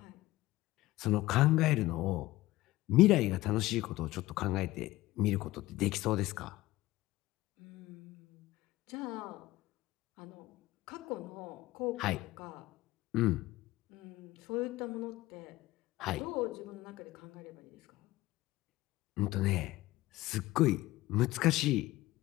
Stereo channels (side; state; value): right; quieter; 17.8 dB